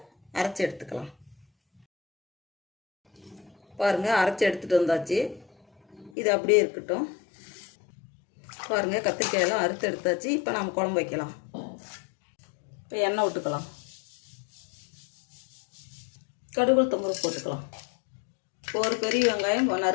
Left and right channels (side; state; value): right; drops out; at 6.1 s